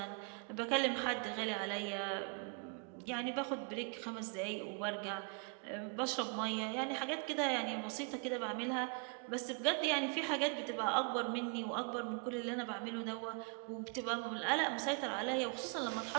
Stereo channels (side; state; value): left; quieter; 37.6 dB